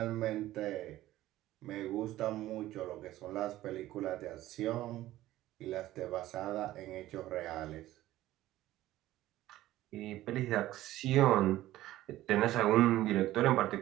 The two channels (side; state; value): left; quieter; 15.2 dB